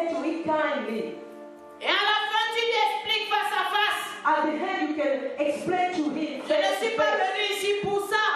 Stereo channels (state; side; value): identical; both; correlation 1.00